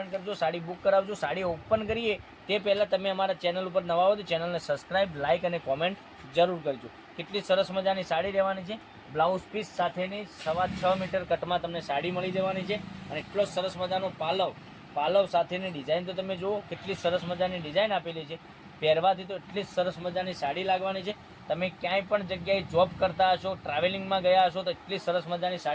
કરજો, સાડી બુક કરાવજો। સાડી ઓપન કરીએ તે પહેલાં તમે અમારા ચેનલ ઉપર નવા હો તો ચેનલને સબસ્ક્રાઈબ, લાઇક અને કોમેન્ટ જરૂર કરજો। કેટલી સરસ મજાની સાડી રહેવાની છે। બ્લાઉઝ પીસ સાથેની 6.25 મીટર કટમાં તમને સાડી મળી જવાની છે અને એટલો સરસ મજાનો પાલવ સાથેની ડિઝાઇન તો તમે જુઓ, કેટલી સરસ મજાની ડિઝાઇન આપેલી છે। પહેરવાથી તો એટલી સરસ મજાની સાડી લાગવાની છે। તમે ક્યાંય પણ જગ્યાએ જોબ કરતા હશો, ટ્રાવેલિંગમાં ગયા હશો તો એટલી સરસ મજાની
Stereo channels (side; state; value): both; identical; correlation 1.00